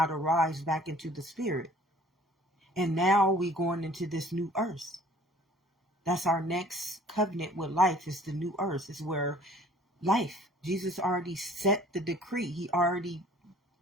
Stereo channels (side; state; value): both; normal; correlation 0.53